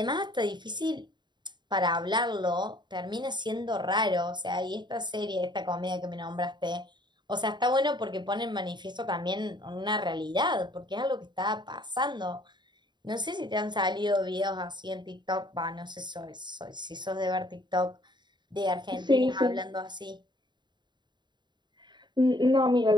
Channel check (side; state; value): left; late; 0.22 ms